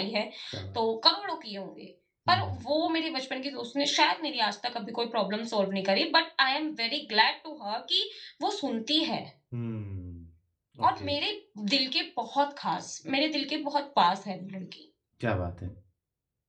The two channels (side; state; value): both; identical; correlation 1.00